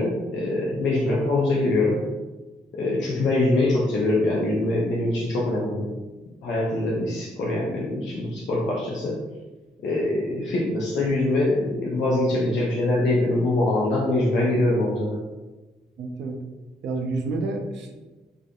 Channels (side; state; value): both; normal; correlation 0.71